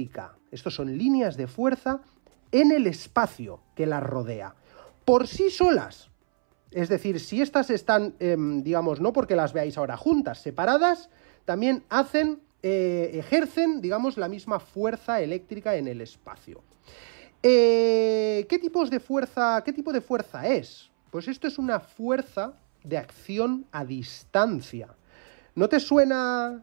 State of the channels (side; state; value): left; silent; 61 dB below the other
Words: Estos son líneas de fuerza en el espacio que las rodea, por sí solas. Es decir, si estas están, no porque las veáis ahora juntas, separadas, también ejercen, la misma fuerza eléctrica en el espacio. ¿Qué tipo de fuerza es? Pues esto es una fuerza de acción a distancia. ¿No te